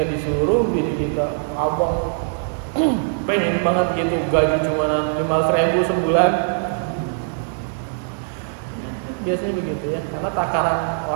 disuruh bini kita, abang pengen banget gitu, gaji cuma 500.000 sebulan. Biasanya begitu ya, karena takaran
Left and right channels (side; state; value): left; silent; 65 dB below the other